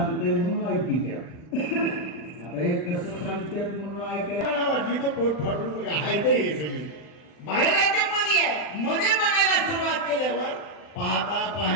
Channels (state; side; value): late; right; 39 ms